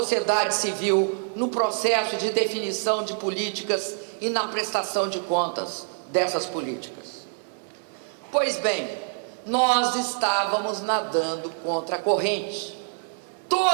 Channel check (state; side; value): silent; left; digital silence